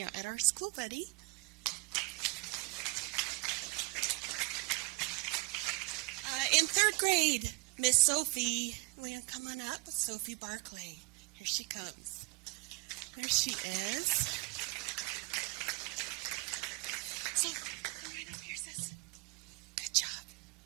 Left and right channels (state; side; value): quieter; left; 26.9 dB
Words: at our school, buddy. In third grade, Miss Sophie, will you come on up? Sophie Barclay. Here she comes. There she is. So, come right up here, sis. Good job.